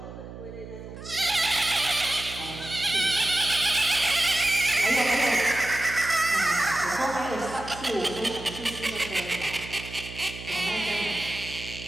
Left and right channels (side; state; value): right; noise; hum, 13 dB below the sound